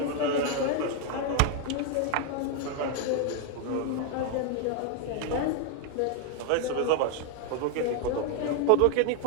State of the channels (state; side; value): different; both; correlation 0.00